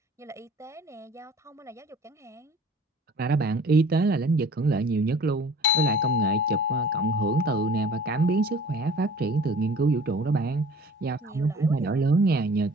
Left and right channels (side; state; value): both; normal; correlation 0.47